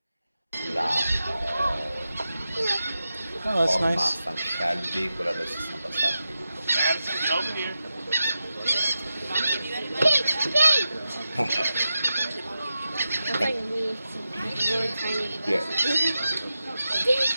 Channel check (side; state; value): both; inverted; correlation -0.91